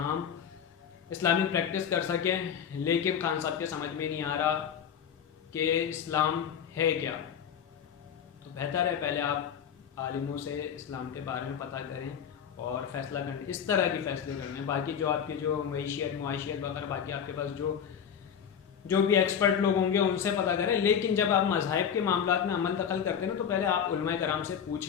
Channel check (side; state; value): right; quieter; 8.1 dB